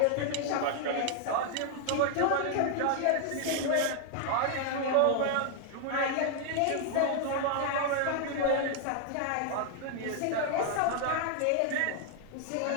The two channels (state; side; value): different; both; correlation 0.00